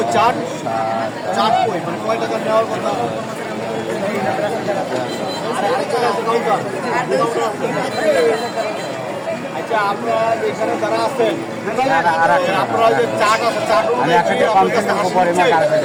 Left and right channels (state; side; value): identical; both; correlation 1.00